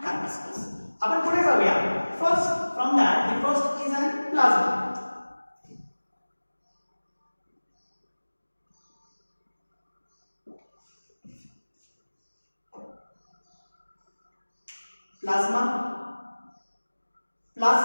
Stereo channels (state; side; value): inverted; both; correlation -1.00